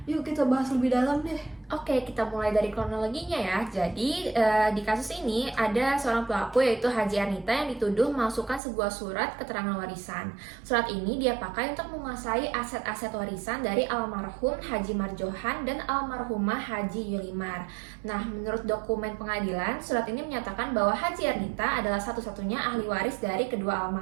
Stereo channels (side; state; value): left; drops out; at 8.6 s